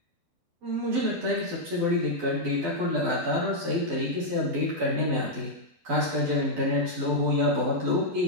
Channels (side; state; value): left; late; 12 ms